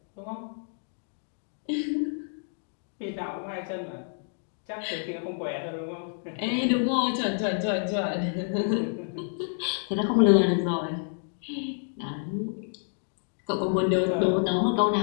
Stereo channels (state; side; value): silent; right; digital silence